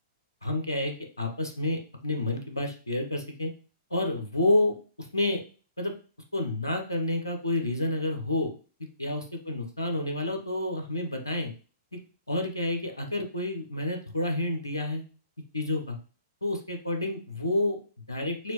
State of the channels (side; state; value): both; inverted; correlation -0.70